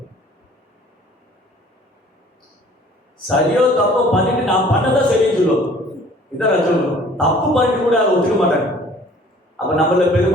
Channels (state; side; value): normal; both; correlation 0.52